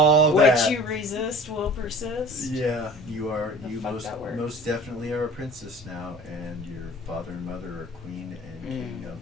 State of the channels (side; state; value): both; normal; correlation 0.44